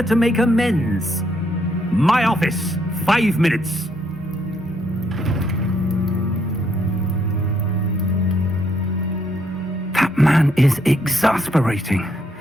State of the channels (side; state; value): both; normal; correlation 0.72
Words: to make amends. My office, 5 minutes. That man is exasperating.